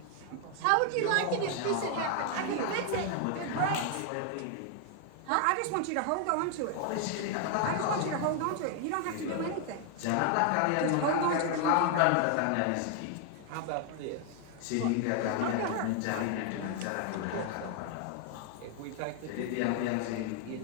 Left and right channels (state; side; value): different; both; correlation 0.00